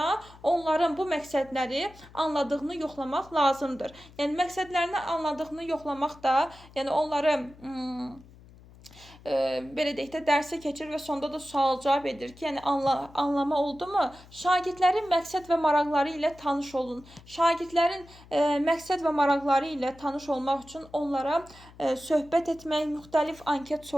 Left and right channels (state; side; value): noise; left; hum, 22 dB below the sound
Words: onların bu məqsədləri anladığını yoxlamaq lazımdır. Yəni məqsədlərini anladığını yoxlamaq da, yəni onları belə deyək də dərsə keçir və sonda da sual-cavab edir ki, yəni anlama oldu mu? Şagirdlərin məqsəd və maraqları ilə tanış olun. Şagirdlərin məqsəd və maraqları ilə tanış olmaq üçün onlara söhbət etmək, müxtəlif anket